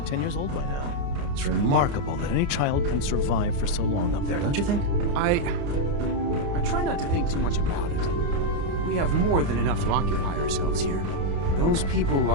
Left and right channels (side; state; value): left; late; 29 ms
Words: years old by now. It's remarkable that any child can survive for so long up there, don't you think? I try not to think too much about it. We have more than enough to occupy ourselves here. Those people